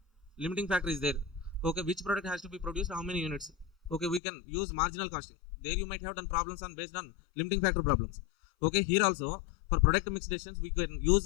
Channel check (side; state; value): right; drops out; at 4.2 s